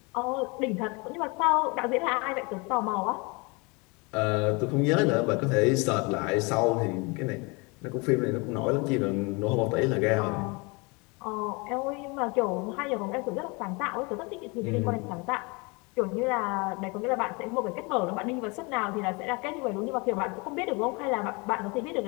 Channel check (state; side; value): quieter; right; 28.7 dB